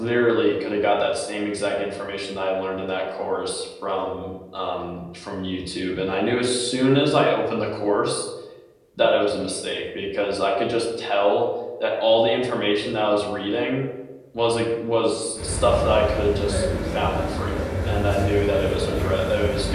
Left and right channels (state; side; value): identical; both; correlation 1.00